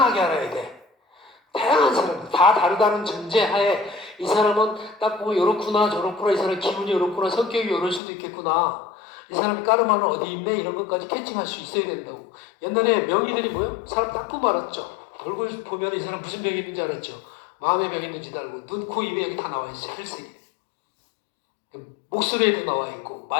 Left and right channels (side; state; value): right; drops out; at 8.0 s